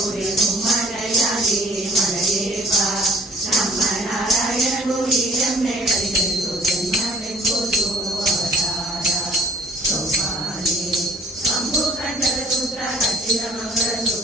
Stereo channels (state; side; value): normal; both; correlation 0.54